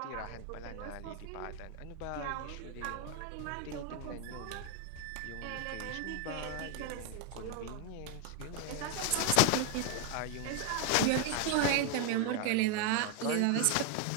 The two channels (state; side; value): different; both; correlation 0.00